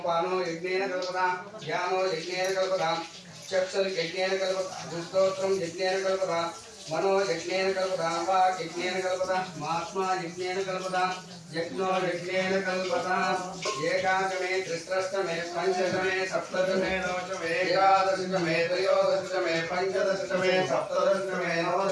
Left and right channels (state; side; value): identical; both; correlation 1.00